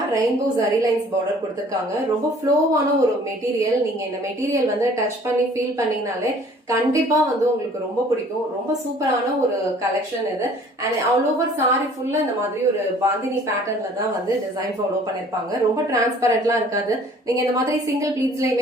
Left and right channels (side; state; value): both; normal; correlation 0.53